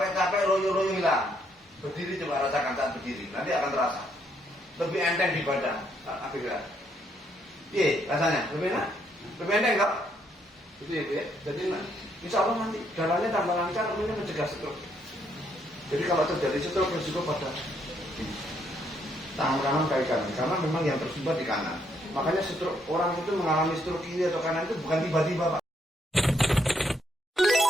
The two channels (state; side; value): normal; both; correlation 0.72